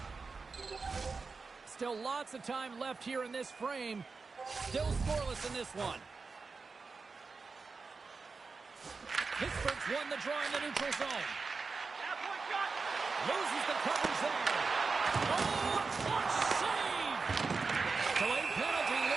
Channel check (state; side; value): quieter; left; 4.4 dB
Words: Still lots of time left here in this frame. Still scoreless in this one. Pittsburgh's won the draw in the neutral zone. Loses the coverage there. Oh, a clutch save! Delayed penalty